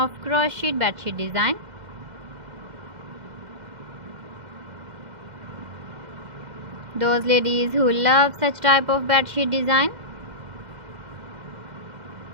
crocheted bedsheet design. Those ladies who love such type of bedsheet design.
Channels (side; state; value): left; late; 2.1 ms